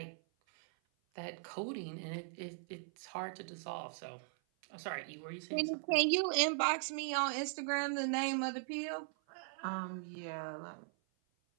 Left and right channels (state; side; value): silent; left; 52 dB below the other